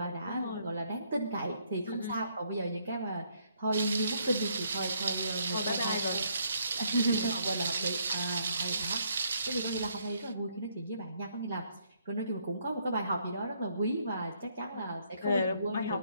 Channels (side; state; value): both; inverted; correlation -0.70